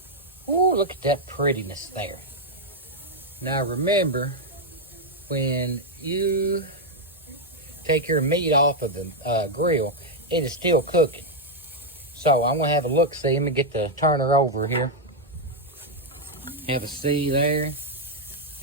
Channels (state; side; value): normal; both; correlation 0.01